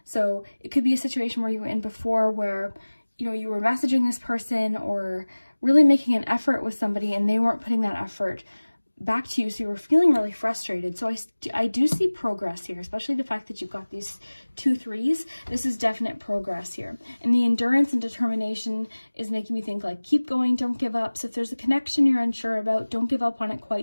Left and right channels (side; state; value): both; inverted; correlation -1.00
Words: So it could be a situation where you were in before where, you know, you were messaging this person or really making an effort with somebody and they weren't putting that effort back to you. So you were feeling really frustrated. So I do see progress here, especially the fact that you've got these 2 3s. This is definite progress here. And the endurance and determination is making me think like, keep going, don't give up. So if there's a connection you're unsure about, don't give up on it